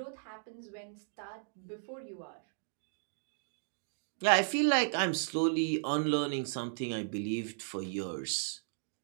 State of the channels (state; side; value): silent; left; digital silence